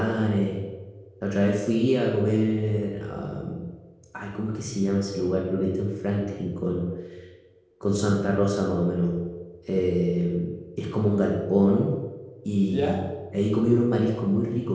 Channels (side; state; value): both; identical; correlation 1.00